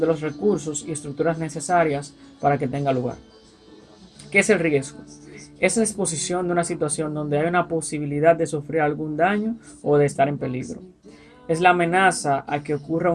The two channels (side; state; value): both; identical; correlation 1.00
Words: de los recursos y estructuras necesarias para que tenga lugar. ¿Qué es el riesgo? Es la exposición de una situación donde hay una posibilidad de sufrir algún daño o de estar en peligro. Es la amenaza a que ocurra